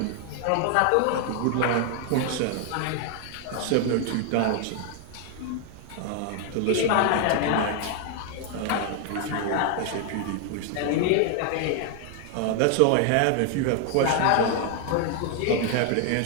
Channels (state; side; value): different; both; correlation 0.00